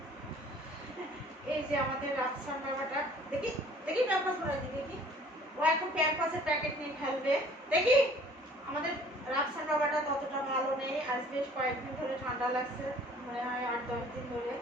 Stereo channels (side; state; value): both; normal; correlation 0.53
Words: এই যে আমাদের রাজসান বাবাটা, দেখি দেখি প্যাম্পাস করে দিই, দেখি ও এখন প্যাম্পাসের প্যাকেট নিয়ে খেলবে। দেখি আমাদের রাজসান বাবাটা ততটা ভালো নেই, আজ বেশ কয়েকদিন ধরে ঠান্ডা লাগছে, মনে হয় 8-10 দিন ধরে।